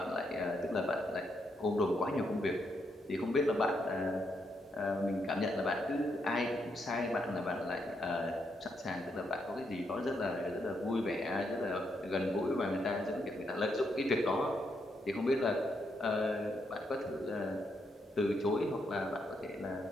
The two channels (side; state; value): both; normal; correlation 0.79